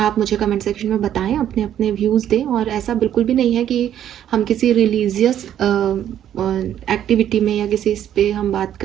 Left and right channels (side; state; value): left; quieter; 10.6 dB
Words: मुझे कमेंट सेक्शन में बताएं, अपने अपने व्यूज़ दें। और ऐसा बिल्कुल भी नहीं है कि हम किसी रिलीजियस एक्टिविटी में या किसी इस पे हम बात